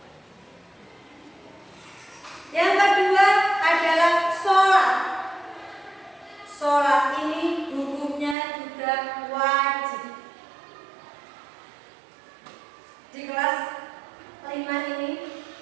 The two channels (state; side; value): drops out; left; at 8.3 s